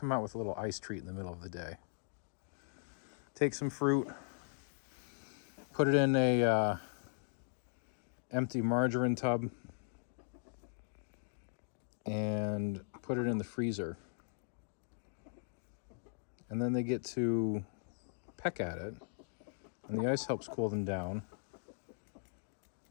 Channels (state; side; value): silent; right; digital silence